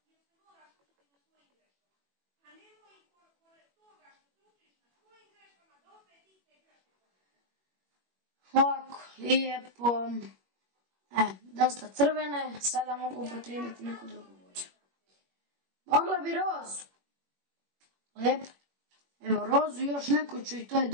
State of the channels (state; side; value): late; left; 21 ms